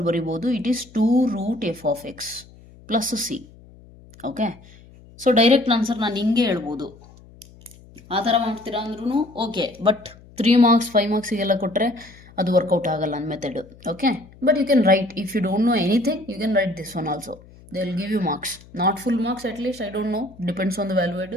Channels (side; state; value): left; noise; hum, 23 dB below the sound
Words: ಬರಿಬೋದು, it is 2√f(x) + c. Okay, so direct answer ನಾನು ಹಿಂಗೆ ಹೇಳ್ಬೋದು. ಆ ಥರ ಮಾಡ್ತೀರಾ ಅಂದ್ರೂ ಓಕೆ, ಬಟ್ 3 marks 5 marksiಗೆಲ್ಲ ಕೊಟ್ಟರೆ ಅದು ವರ್ಕೌಟ್ ಆಗಲ್ಲ ನನ್ನ method. Okay, but you can write, if you don't know anything you can write this one also, they will give you marks, not full marks, at least I don't know, depends on the valuate.